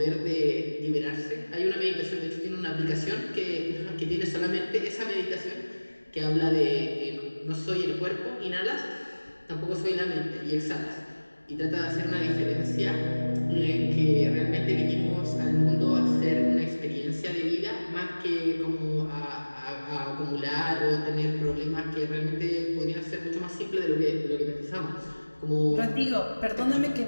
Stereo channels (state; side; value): inverted; both; correlation -1.00